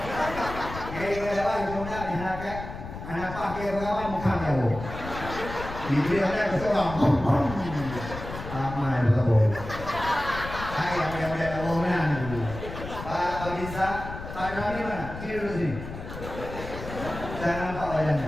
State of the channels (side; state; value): left; noise; rumble, 10 dB below the sound